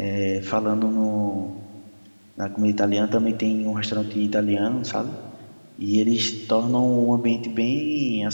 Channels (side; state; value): both; inverted; correlation -1.00